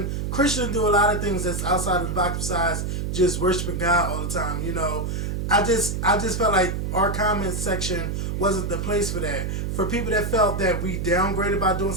Christians do a lot of things that's outside of the box besides just worshiping God all the time. You know, I just felt like our comment section wasn't the place for that. For people that felt that we downgraded by doing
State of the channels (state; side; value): noise; right; hum, 2 dB below the sound